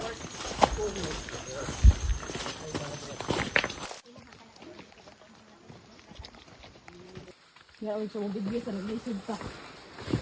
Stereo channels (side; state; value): both; identical; correlation 1.00